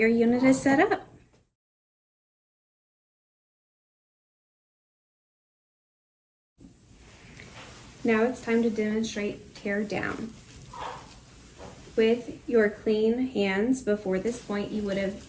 unit is set up. Now it's time to demonstrate tear down. With your clean hands before this point, you would have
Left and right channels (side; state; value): both; identical; correlation 1.00